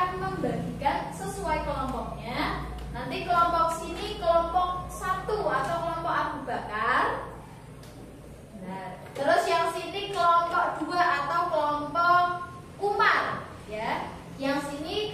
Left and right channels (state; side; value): identical; both; correlation 1.00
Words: membagikan sesuai kelompoknya. Nanti kelompok sini kelompok 1 atau kelompok Abu Bakar. Nah, terus yang sini kelompok 2 atau kelompok Umar, ya. Yang sini